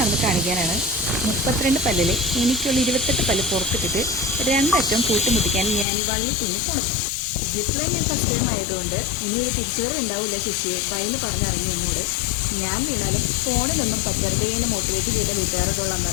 കാണിക്കാനാണ്. 32 പല്ലില് എനിക്കുള്ള 28 പല്ല് പുറത്തിട്ടിട്ട് 2 അറ്റവും കൂട്ടിമുട്ടിക്കാൻ ഞാൻ ഈ വള്ളി തുന്നിപ്പോണത്. സിപ്പ് ലൈൻ ഞാൻ ഫസ്റ്റ് ടൈം ആയതുകൊണ്ട് ഇനി ഒരു തിരിച്ചുവരവ് ഉണ്ടാവില്ല ശശിയെ ഭയന്ന് പറഞ്ഞിറങ്ങി എന്നോട്. ഞാൻ വീണാലും ഫോണിലൊന്നും പറ്റരുതേ എന്ന് മോട്ടിവേറ്റ് ചെയ്ത വീട്ടുകാരോടുള്ള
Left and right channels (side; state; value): right; drops out; at 5.9 s